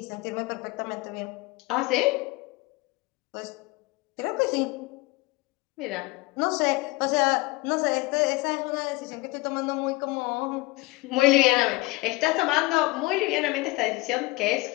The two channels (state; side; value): quieter; right; 22.8 dB